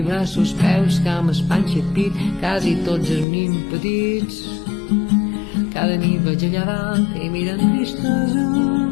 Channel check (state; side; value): drops out; right; at 3.2 s